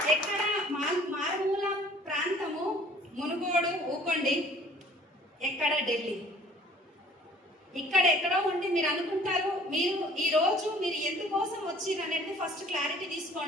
ఎక్కడ మారుమూల ప్రాంతము మునుగోడు, ఊకొండి, ఎక్కడ ఢిల్లీ. ఇక్కడ ఎక్కడో ఉండి మీరు అనుకుంటారు మీరు ఈరోజు మీరు ఎందుకోసం వచ్చిర్రు అనేది ఫస్ట్ క్లారిటీ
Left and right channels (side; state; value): both; normal; correlation 0.52